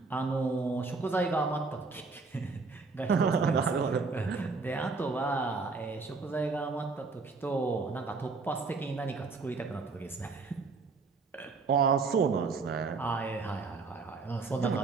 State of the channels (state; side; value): quieter; left; 4.3 dB